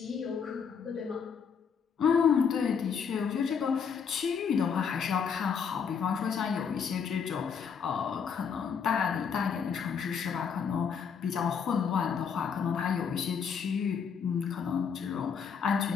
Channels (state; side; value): quieter; right; 6.7 dB